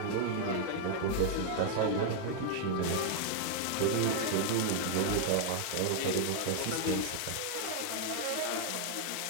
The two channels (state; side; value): different; both; correlation 0.00